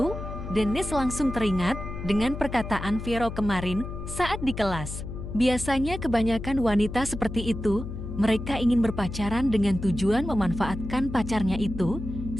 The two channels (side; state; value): left; noise; hum, 8 dB below the sound